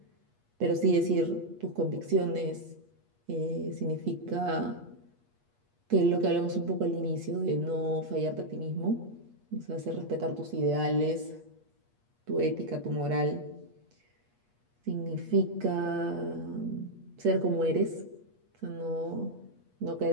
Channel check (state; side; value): late; left; 8.4 ms